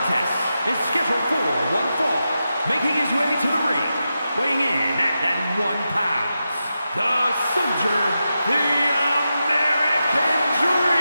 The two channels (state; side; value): inverted; both; correlation -0.89